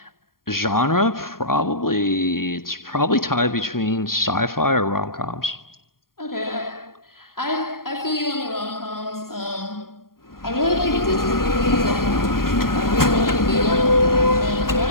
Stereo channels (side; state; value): right; late; 0.92 ms